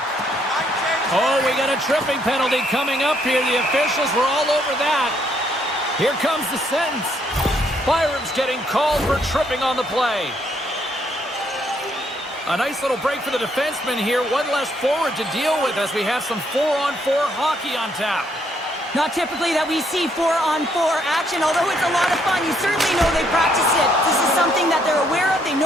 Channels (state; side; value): normal; both; correlation 0.71